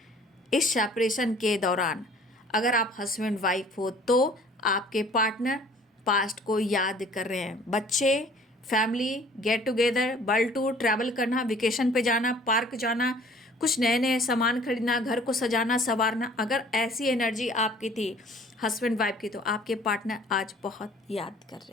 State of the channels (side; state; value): both; normal; correlation 0.52